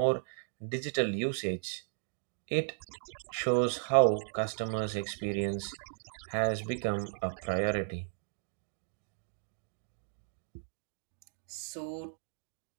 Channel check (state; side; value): silent; left; digital silence